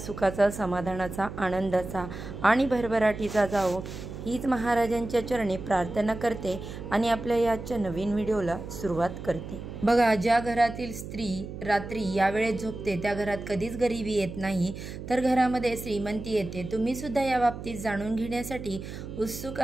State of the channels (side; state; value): right; noise; hum, 10 dB below the sound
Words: समाधानाचा, आनंदाचा आणि भरभराटीचा जावो हीच महाराजांच्या चरणी प्रार्थना करते आणि आपल्या याच्या नवीन व्हिडिओला सुरुवात करते। बघा, ज्या घरातील स्त्री रात्री या वेळेत झोपते त्या घरात कधीच गरिबी येत नाही, तर घरामध्ये श्रीमंती येते। तुम्ही सुद्धा या बाबतीत जाणून घेण्यासाठी उत्सुक